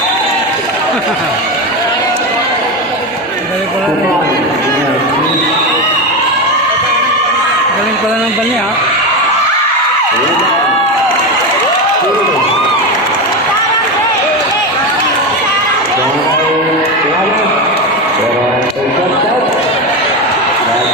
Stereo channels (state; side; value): normal; both; correlation 0.17